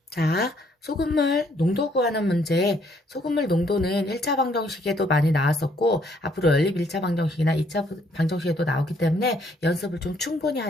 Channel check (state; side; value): normal; both; correlation 0.67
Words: 자, 소금물 농도 구하는 문제. 소금물 농도는 1차 방정식에도 많이 나왔었고, 앞으로 연립 1차 방정식이나 2차 방정식에도 나오기 때문에 연습을 좀 충분히